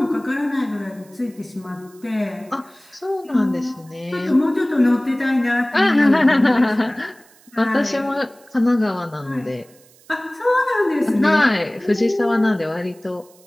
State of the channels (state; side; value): noise; right; hiss, 28 dB below the sound